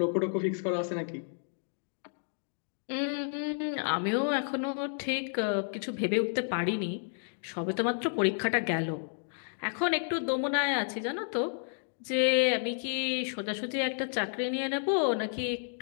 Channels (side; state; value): right; silent; digital silence